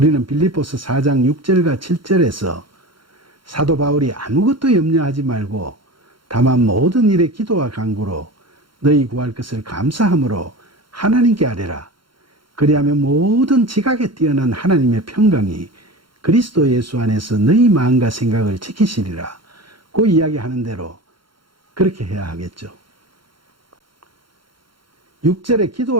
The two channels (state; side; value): late; left; 0.73 ms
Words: 빌립보서 4장 6절과 7절에서 사도 바울이 아무것도 염려하지 말고 다만 모든 일에 기도와 간구로 너희 구할 것을 감사함으로 하나님께 아뢰라. 그리하면 모든 지각에 뛰어난 하나님의 평강이 그리스도 예수 안에서 너희 마음과 생각을 지키시리라. 그 이야기하는 대로 그렇게 해야 하겠죠. 6절에